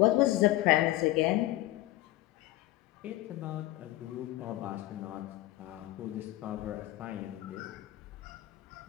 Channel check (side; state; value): right; quieter; 17.0 dB